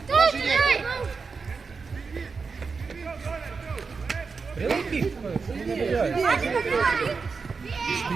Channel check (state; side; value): quieter; left; 4.9 dB